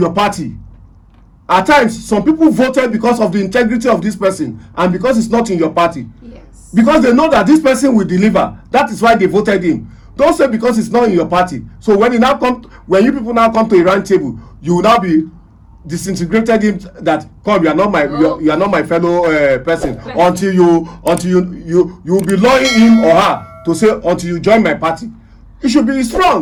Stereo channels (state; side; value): identical; both; correlation 1.00